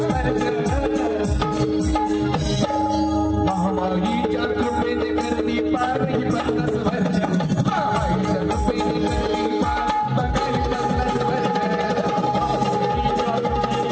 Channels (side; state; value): both; identical; correlation 1.00